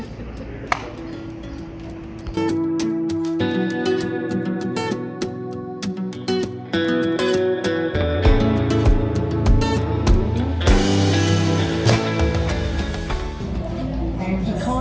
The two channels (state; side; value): identical; both; correlation 1.00